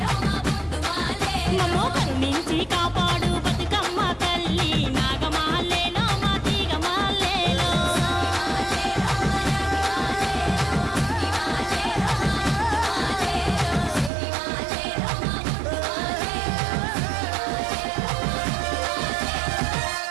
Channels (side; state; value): left; drops out; at 14.1 s